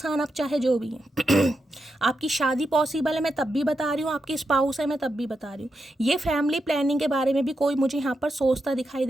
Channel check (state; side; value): normal; both; correlation 0.86